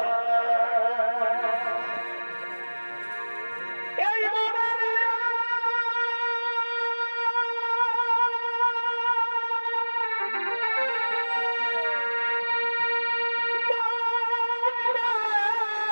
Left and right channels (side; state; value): both; inverted; correlation -1.00